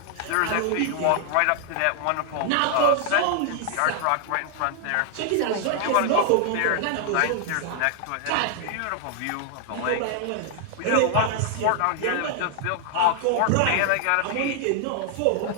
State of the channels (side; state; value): both; different; correlation 0.00